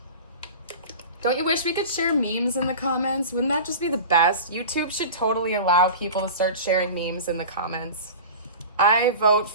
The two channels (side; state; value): both; inverted; correlation -0.34